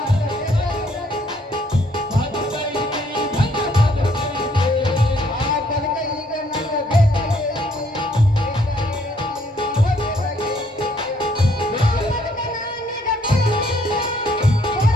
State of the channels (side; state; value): both; normal; correlation 0.66